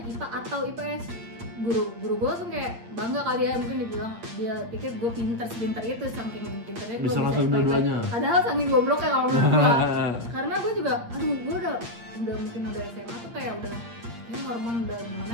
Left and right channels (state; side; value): late; left; 8.6 ms